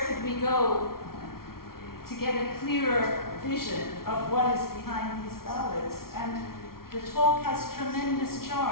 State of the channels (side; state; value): right; late; 0.93 ms